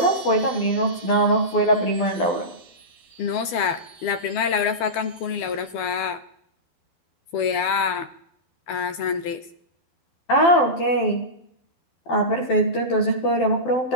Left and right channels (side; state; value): right; late; 12 ms